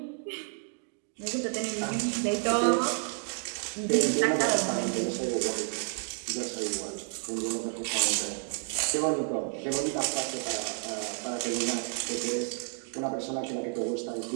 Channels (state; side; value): silent; left; 57 dB below the other